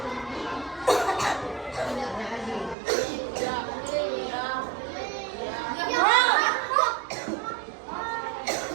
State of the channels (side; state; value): left; drops out; at 2.8 s